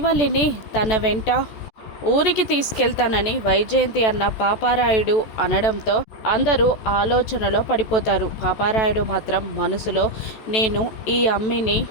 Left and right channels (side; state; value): right; late; 14 ms